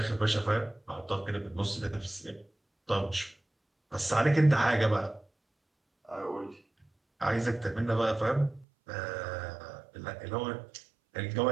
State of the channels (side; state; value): left; drops out; at 8.7 s